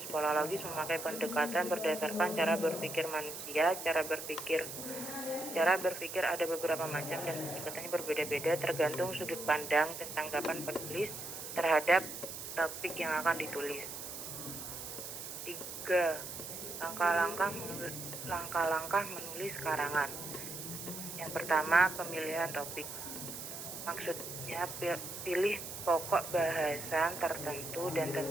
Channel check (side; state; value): right; noise; hiss, 8 dB below the sound